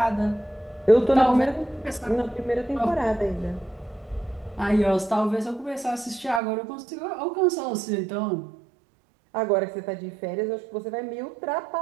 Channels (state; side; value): drops out; left; at 6.4 s